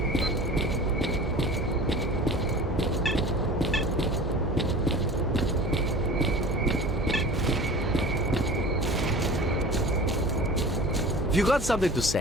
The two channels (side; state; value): both; normal; correlation 0.39